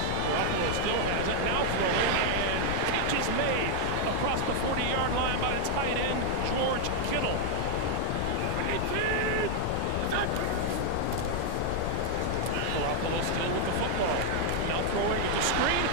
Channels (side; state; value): both; different; correlation 0.00